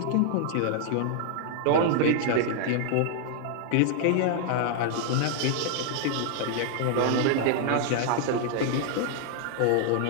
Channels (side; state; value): both; different; correlation 0.00